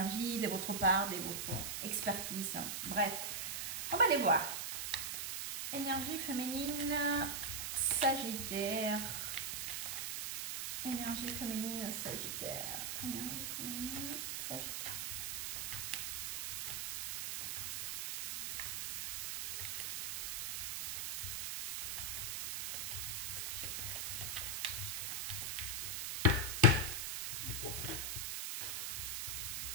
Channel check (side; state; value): right; noise; hiss, 2 dB below the sound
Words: de votre part, de votre expertise. Bref, on va aller voir. Énergie féminine, Sagittaire. Énergie féminine, Sagittaire. Énergie féminine, Sagittaire.